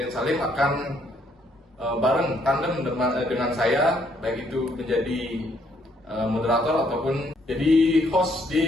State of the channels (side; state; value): both; normal; correlation 0.69